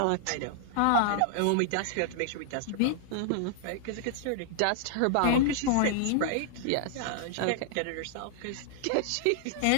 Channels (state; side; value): different; both; correlation -0.01